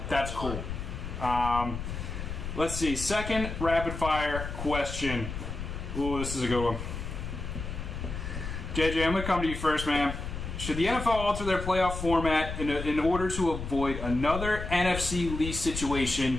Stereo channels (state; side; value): noise; left; rumble, 6 dB below the sound